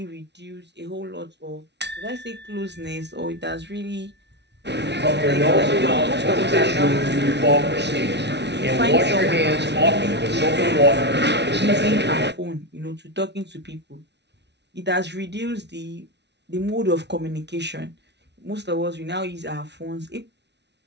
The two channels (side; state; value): left; late; 0.50 ms